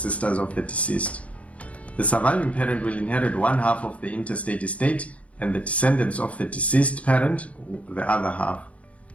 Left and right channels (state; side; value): late; right; 0.065 ms